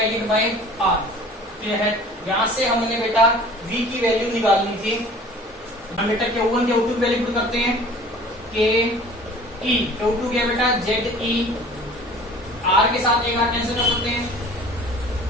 by r। Clear है? यहाँ से हमने बेटा v की वैल्यू निकालनी थी। हम बेटा Q1 Q2 की वैल्यू पुट करते हैं। Q2 क्या बेटा? ZE, r के साथ एक r कैंसिल कर सकते हैं,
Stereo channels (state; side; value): normal; both; correlation 0.46